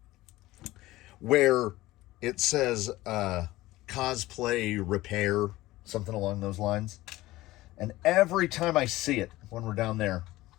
where it says cosplay repair, something along those lines. And every time I see it when we're down there,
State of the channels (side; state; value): right; quieter; 17.7 dB